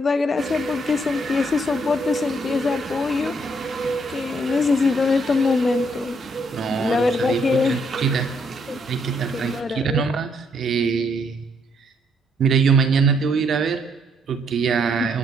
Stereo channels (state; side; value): normal; both; correlation 0.71